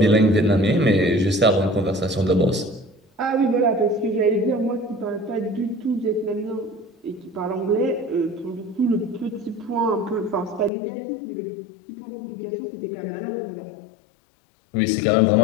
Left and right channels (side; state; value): right; drops out; at 10.7 s